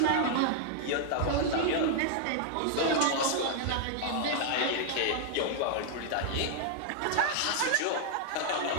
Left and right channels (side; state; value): both; different; correlation -0.01